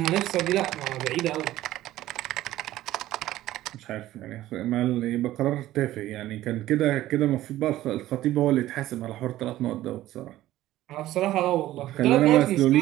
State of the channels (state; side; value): quieter; left; 14.8 dB